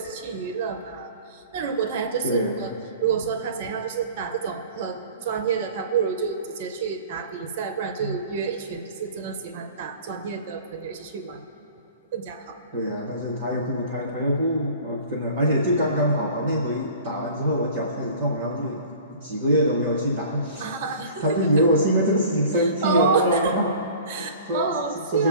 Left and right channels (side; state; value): both; inverted; correlation -0.44